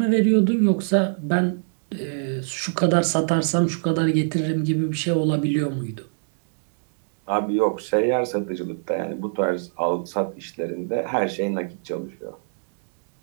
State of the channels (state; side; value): silent; left; digital silence